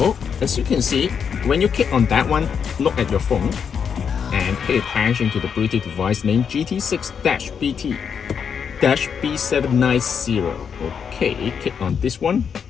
as you can see, when you click on that one, look at your phone and pay attention to the Bluetooth device name GT6-BT-B790. Okay, click on this one.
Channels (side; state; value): right; quieter; 7.0 dB